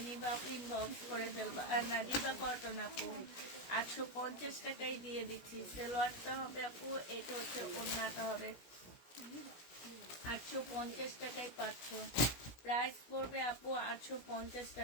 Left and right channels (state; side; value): late; right; 17 ms